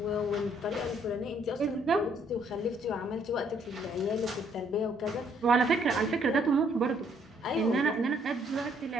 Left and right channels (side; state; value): both; normal; correlation 0.67